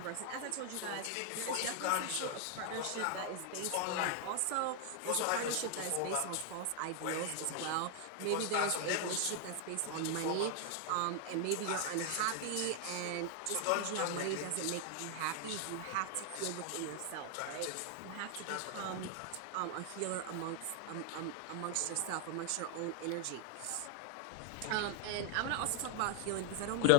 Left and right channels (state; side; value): different; both; correlation 0.00